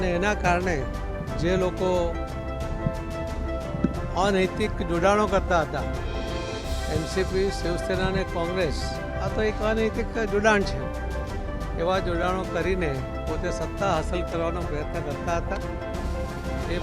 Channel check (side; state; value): both; identical; correlation 1.00